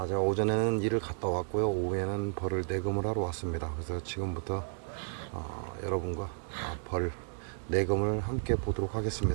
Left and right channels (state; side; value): silent; left; digital silence